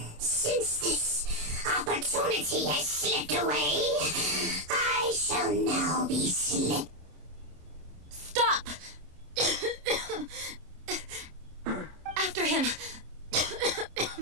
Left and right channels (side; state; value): left; late; 27 ms